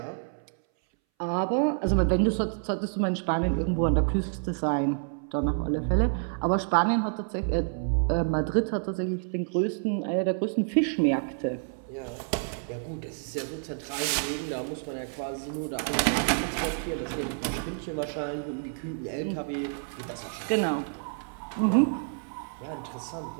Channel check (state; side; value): silent; left; 59 dB below the other